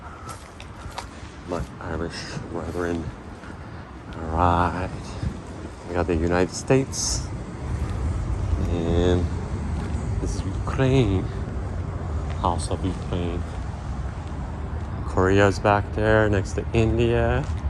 My Irish brethren. Alright. We got the United States. And this is Ukraine. House of Ukraine. Korea's back there next to India.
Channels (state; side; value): identical; both; correlation 1.00